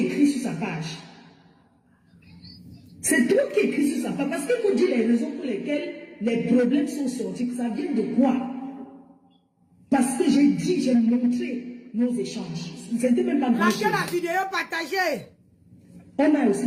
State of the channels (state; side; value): identical; both; correlation 1.00